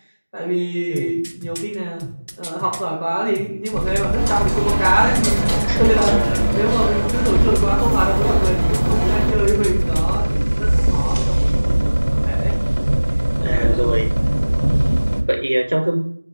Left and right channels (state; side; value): inverted; both; correlation -1.00